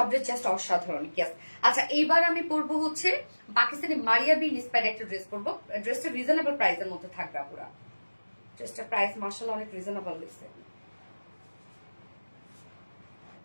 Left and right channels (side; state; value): both; inverted; correlation -1.00